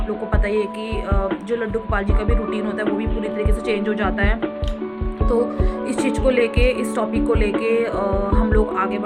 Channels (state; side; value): identical; both; correlation 1.00